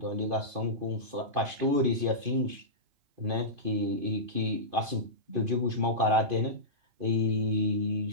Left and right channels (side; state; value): left; late; 2.5 ms